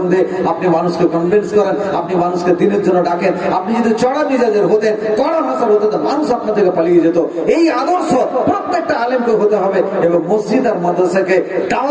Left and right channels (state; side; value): identical; both; correlation 1.00